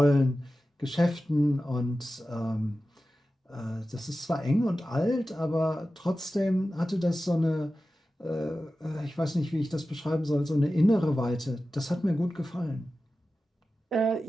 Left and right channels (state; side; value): normal; both; correlation 0.94